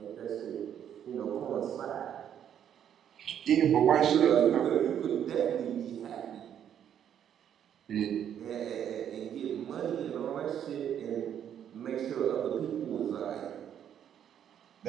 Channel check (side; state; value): left; quieter; 9.5 dB